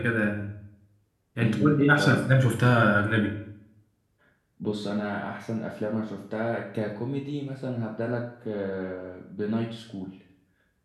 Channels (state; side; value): identical; both; correlation 1.00